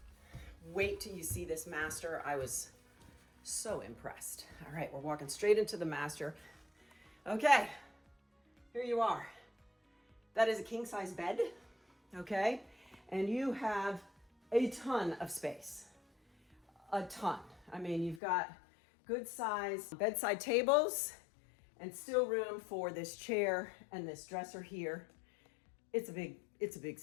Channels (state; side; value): drops out; right; at 18.2 s